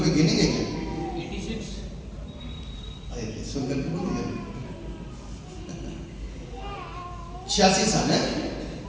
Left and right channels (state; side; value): identical; both; correlation 1.00